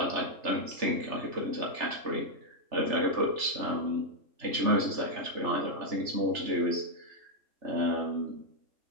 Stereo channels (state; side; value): late; left; 3.4 ms